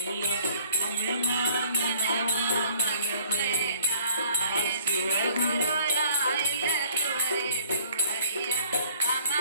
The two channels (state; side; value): inverted; both; correlation -0.56